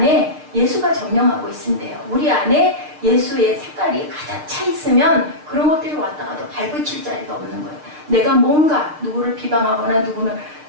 예수가 점령하고 있는데요. 우리 안에 예수의 색깔이 가득 차 있으면 그런 것들이 왔다가도 발붙일 자리가 없는 거예요. 내가 뭔가 누구를 비방하거나 누구는,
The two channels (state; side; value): late; left; 6.6 ms